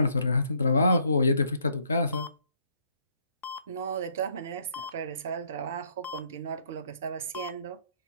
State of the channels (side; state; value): both; inverted; correlation -0.69